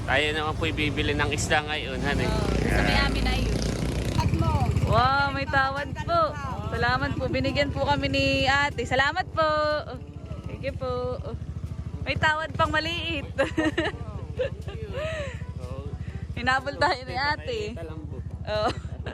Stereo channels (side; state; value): both; identical; correlation 1.00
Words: Tayo naman po ibibili ng isda ngayon, honey. Sa may amin na yun. At mo. Wow, may tawad po. Salamat po. Binigyan po kami ni ate. Salamat po. Thank you po. May tawad pang maliit. Hinabol tayo ni ate. Oh.